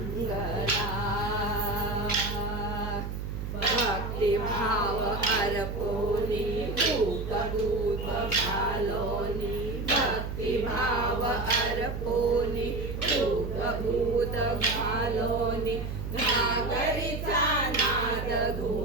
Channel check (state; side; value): noise; right; hum, 5 dB below the sound